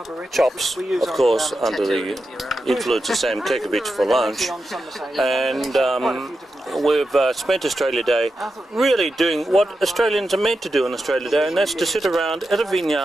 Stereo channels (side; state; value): both; normal; correlation 0.89